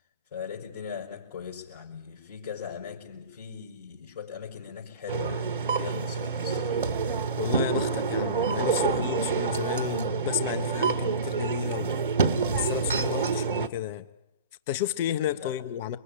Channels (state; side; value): inverted; both; correlation -0.36